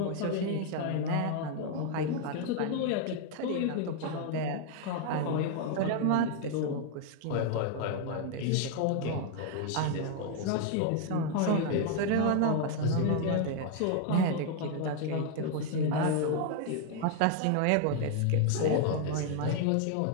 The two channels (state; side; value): different; both; correlation 0.01